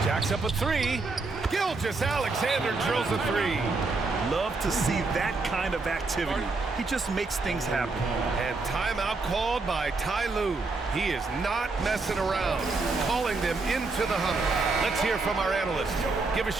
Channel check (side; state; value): left; quieter; 3.8 dB